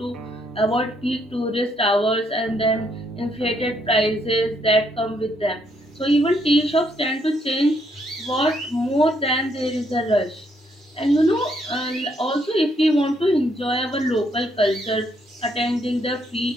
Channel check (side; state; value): both; normal; correlation 0.73